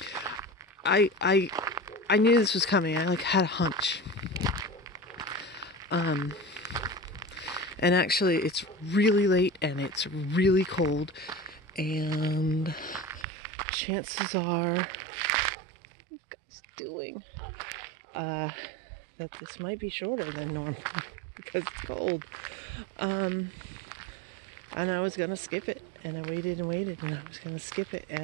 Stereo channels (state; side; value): drops out; left; at 13.2 s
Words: I knew this was coming. I had a hunch. And actually it's really late and it's really cold. And chances are, what are you guys doing? That this might be shorter than normal because it's cold. And I was gonna skip it, and I waited and waited, and I was gonna skip it,